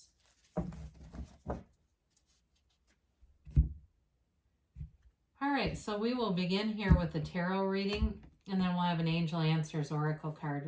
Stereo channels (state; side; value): identical; both; correlation 1.00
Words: All right, so we will begin here with the tarot reading, and then we'll have an Angel Answers Oracle card